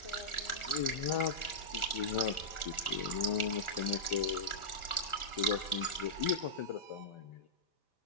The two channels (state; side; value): late; right; 1.4 ms